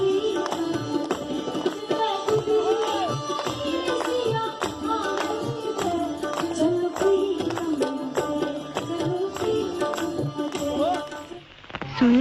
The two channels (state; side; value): identical; both; correlation 1.00